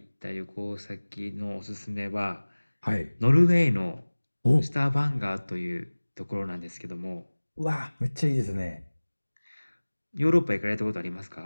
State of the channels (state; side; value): inverted; both; correlation -1.00